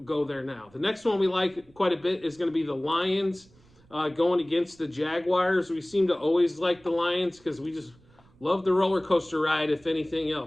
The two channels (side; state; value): right; noise; rumble, 29 dB below the sound